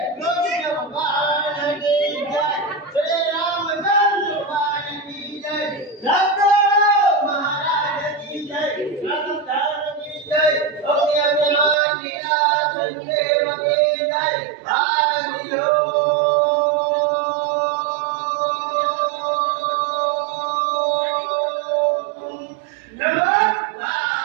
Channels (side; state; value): left; drops out; at 11.8 s